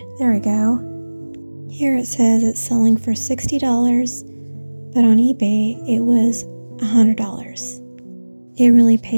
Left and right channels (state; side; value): inverted; both; correlation -1.00